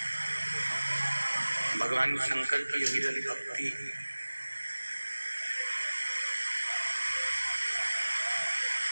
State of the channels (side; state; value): both; inverted; correlation -1.00